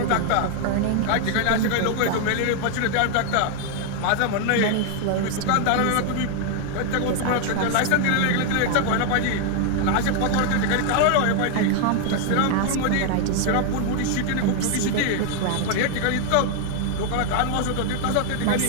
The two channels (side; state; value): both; different; correlation 0.00